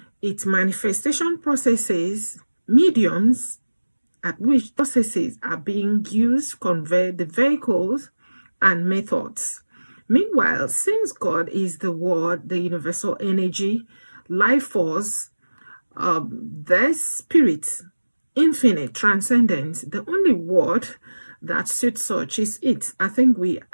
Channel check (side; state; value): both; inverted; correlation -1.00